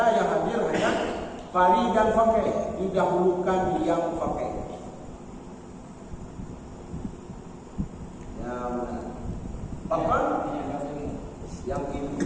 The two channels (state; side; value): identical; both; correlation 1.00